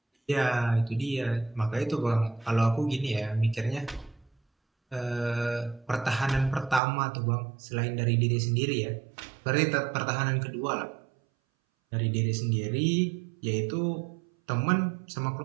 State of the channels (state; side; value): drops out; left; at 6.8 s